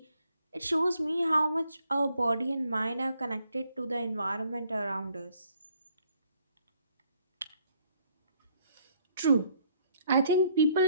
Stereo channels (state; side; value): inverted; both; correlation -0.66